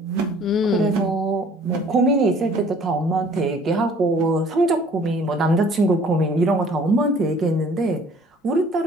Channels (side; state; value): both; normal; correlation 0.54